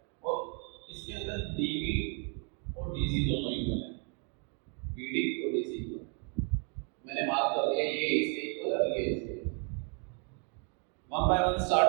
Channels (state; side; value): quieter; left; 39.1 dB